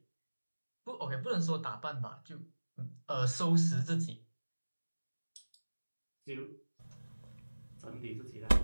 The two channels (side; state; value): both; inverted; correlation -1.00